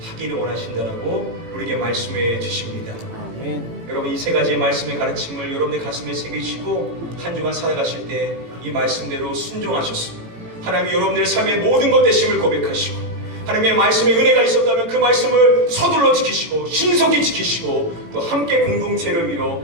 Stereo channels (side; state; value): left; late; 18 ms